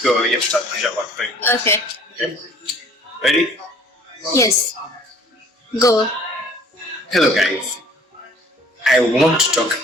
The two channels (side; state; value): both; normal; correlation 0.54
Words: tutaanza kwa frame. Okay. Okay. Ready? Yes. Go. Hello guys. I want to talk